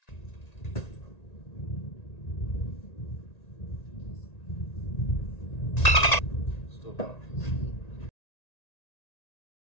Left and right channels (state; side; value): late; right; 1.9 ms